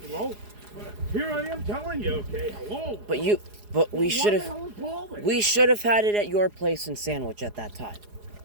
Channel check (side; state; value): left; late; 4.8 ms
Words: well, here I am telling you. Okay, hello. But we should Why the have. hell is Paul there? We should have had it at your place in Sandwich at that time.